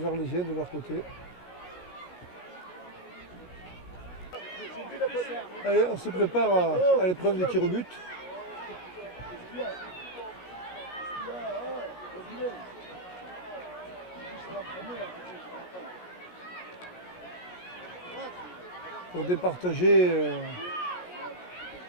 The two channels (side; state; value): right; late; 17 ms